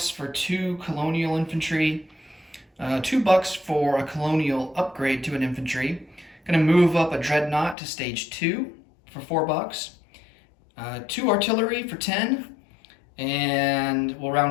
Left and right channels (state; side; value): drops out; right; at 7.8 s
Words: for 2 colonial infantry, $2 for a colonial upgrade to an infantry. Going to move up a dreadnought to stage 2 for $4. 2 artillery for 10, and we'll